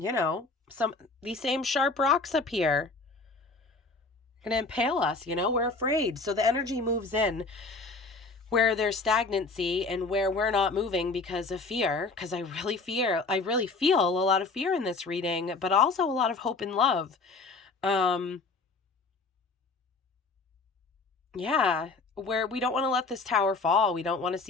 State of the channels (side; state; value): right; quieter; 3.9 dB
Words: these same sharp rocks up here are going to impale us, we're afraid. So the energy moves in where there's stagnancy and where we're not moving because of fear, because I really feel a lot of fear in this reading, but also a lot of hope and love. Yeah, where we don't want to let this tower fall. We don't want to